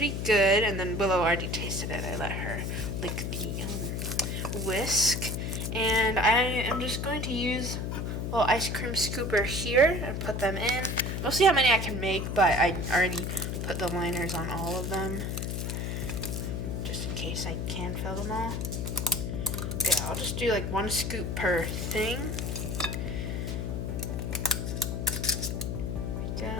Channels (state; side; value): noise; left; hum, 2 dB below the sound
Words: good. And then Willow already tasted it. I let her lick the whisk. And I am just going to use a little ice cream scooper here and put them in. We'll see how many I can make, but I already put the liners on all of them, just in case I can fill them all. Yeah, I'll just do like 1 scoop per thing. There we